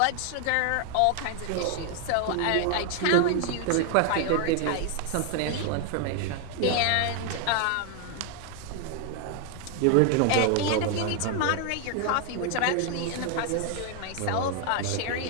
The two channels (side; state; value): both; different; correlation 0.00